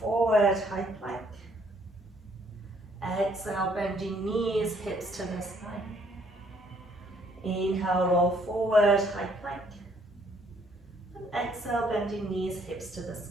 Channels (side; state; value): both; normal; correlation 0.65